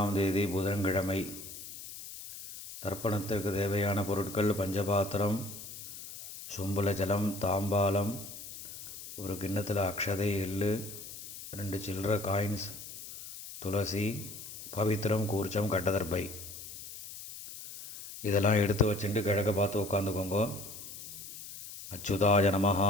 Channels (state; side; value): noise; left; hiss, 12 dB below the sound